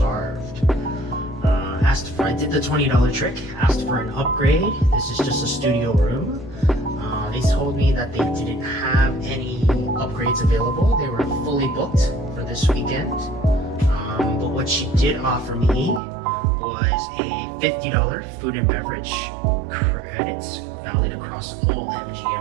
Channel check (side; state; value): left; drops out; at 16.0 s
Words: I did the $20 trick, asked for an upgrade. This is just a studio room. They told me that they didn't have any upgrades available. They were fully booked for this weekend. But what she did offer me was a $50 food and beverage credits valid across all